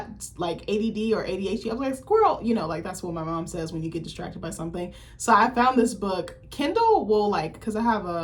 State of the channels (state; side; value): identical; both; correlation 1.00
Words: like ADD or ADHD. I was like, squirrel, like that's what my mom says when you get distracted by something. So I found this book. Kindle will because I have